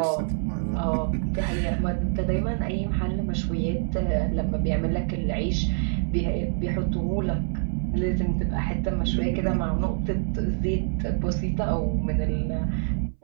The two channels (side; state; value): left; silent; 61 dB below the other